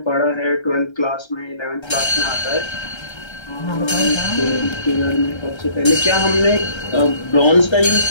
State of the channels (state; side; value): late; right; 1.3 ms